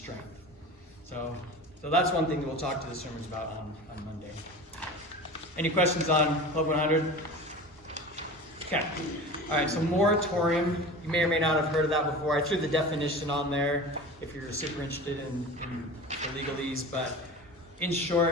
So that's one thing that we'll talk to the swimmers about on Monday. Any questions on Club 100? Okay. All right, so moratorium, you may or may not have heard of that before. I threw the definition on there if you're super interested in the legalese, but in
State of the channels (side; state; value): both; normal; correlation 0.35